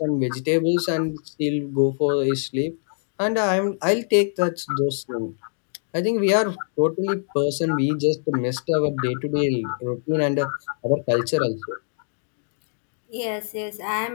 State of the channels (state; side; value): silent; right; digital silence